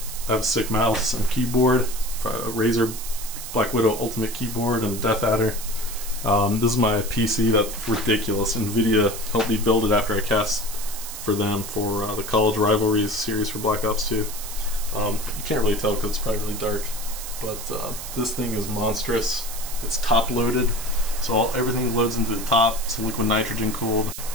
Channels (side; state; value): right; noise; hiss, 9 dB below the sound